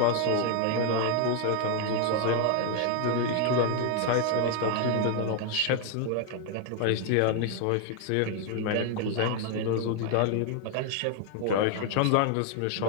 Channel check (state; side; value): different; both; correlation 0.00